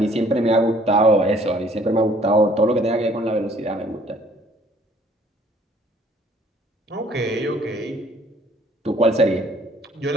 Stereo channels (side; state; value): both; normal; correlation 0.59